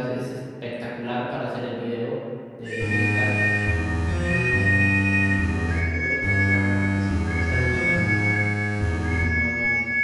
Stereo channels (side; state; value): both; identical; correlation 1.00